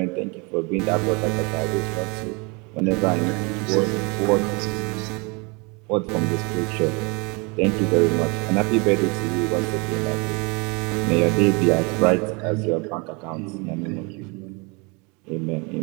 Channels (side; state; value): left; quieter; 30.1 dB